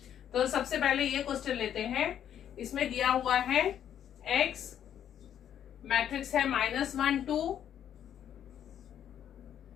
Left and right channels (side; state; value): right; quieter; 9.9 dB